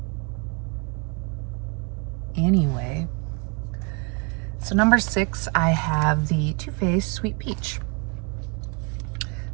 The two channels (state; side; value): quieter; left; 32.3 dB